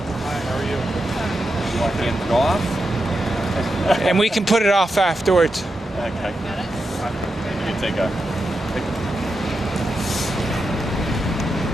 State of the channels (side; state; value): both; normal; correlation 0.87